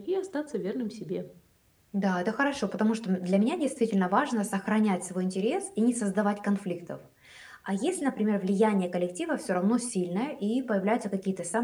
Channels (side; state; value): both; identical; correlation 1.00